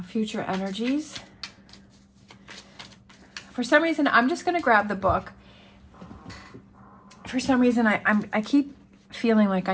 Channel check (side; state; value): both; identical; correlation 1.00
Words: future energies. For some reason, I'm just going to grab the book. For some reason, I keep feeling like